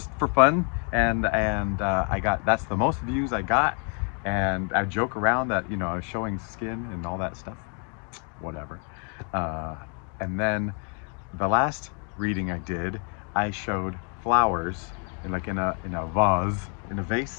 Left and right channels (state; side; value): quieter; right; 40.0 dB